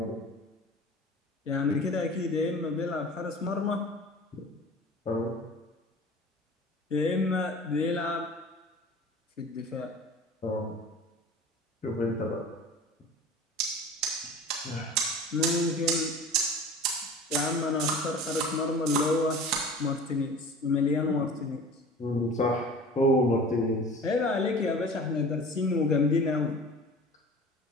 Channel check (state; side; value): normal; both; correlation 0.40